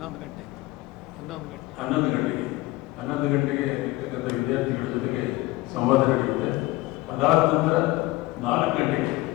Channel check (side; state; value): right; quieter; 19.7 dB